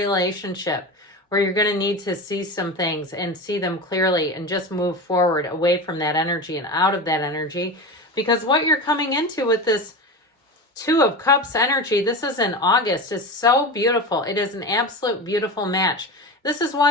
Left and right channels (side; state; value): both; normal; correlation 0.25